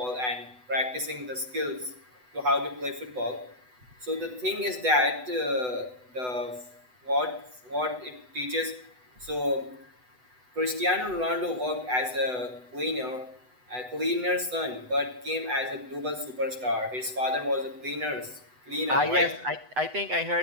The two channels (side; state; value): left; late; 8.0 ms